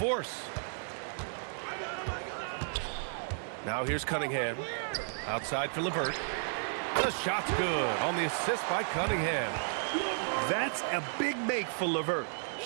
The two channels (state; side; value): silent; left; 56 dB below the other